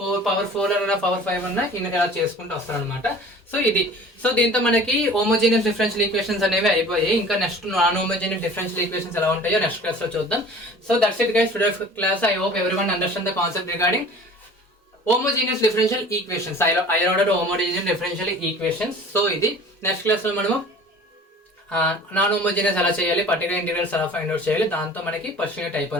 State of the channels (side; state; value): both; normal; correlation 0.44